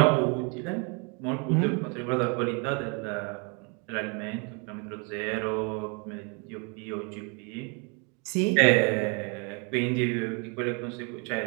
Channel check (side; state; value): left; quieter; 34.2 dB